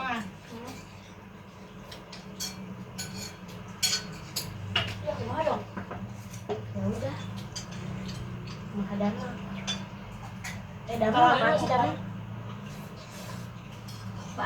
Ya kumaha dong? Ya udah. Kumaha dana. Dana apaan sih dana?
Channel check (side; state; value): both; identical; correlation 1.00